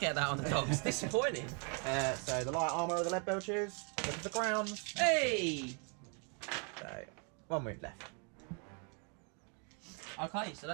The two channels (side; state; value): left; quieter; 38.0 dB